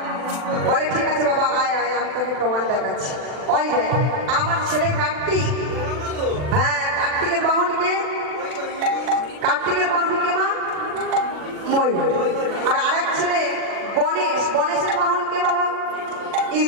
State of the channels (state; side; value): late; left; 40 ms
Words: বলে ঠিক আছে বাবা আয় আয়, আমি তোকে প্রমাণ দেখাচ্ছি। ওই দেখ আমার ছেলে কার্তিক, হ্যাঁ কার্তিকের বাহন কে? কার্তিকের বাহন কে মা? ময়ূর। আর আরেক ছেলে গণেশ, গণেশের বাহন কে বাবা?